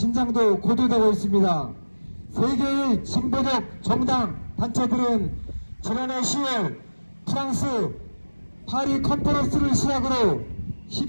고조되고 있습니다. 세계의 진보적 정당 단체들은 지난해 10월 프랑스 파리 컨퍼런스를 시작으로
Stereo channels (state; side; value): inverted; both; correlation -1.00